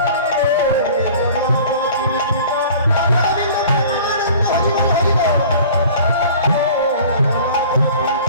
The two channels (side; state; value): both; inverted; correlation -0.45